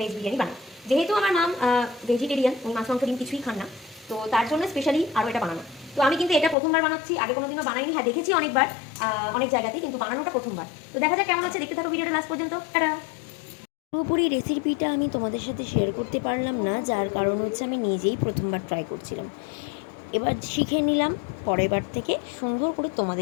বিরিয়ানি বানাই। যেহেতু আমার নাম ভেজিটেরিয়ান, উনি মাছ মাংস ডিম কিছুই খান না, তো তার জন্য স্পেশালি আরও এটা বানানো। তো আমি কিন্তু এটা প্রথমবার বানাচ্ছি, আগে কোনোদিনও বানাইনি। হ্যাঁ, দেখেছি অনেকবার অনেক জায়গাতে, কিন্তু বানানোটা প্রথমবার। তো দেখা যাক কেমন হচ্ছে, দেখতে থাকো ভিডিওটা লাস্ট পর্যন্ত। টাটা। পুরোপুরি রেসিপিটা আমি তোমাদের সাথে শেয়ার করতে পারলাম না, যার কারণ হচ্ছে আমি নিজেই প্রথমবার ট্রাই করছিলাম। এবার শিখে নিলাম, পরের বার থেকে সুন্দর করে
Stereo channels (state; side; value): drops out; right; at 6.6 s